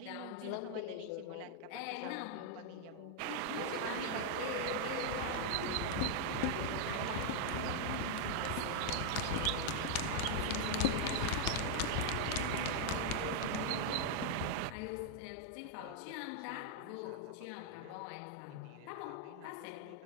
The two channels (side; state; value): both; different; correlation 0.00